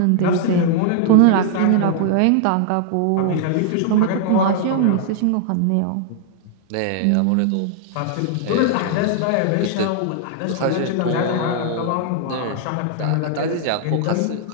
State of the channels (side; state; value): both; different; correlation -0.01